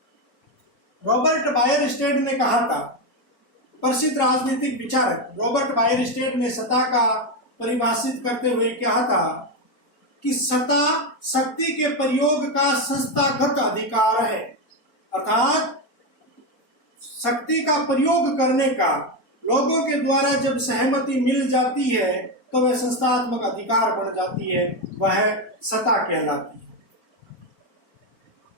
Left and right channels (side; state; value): right; late; 4.3 ms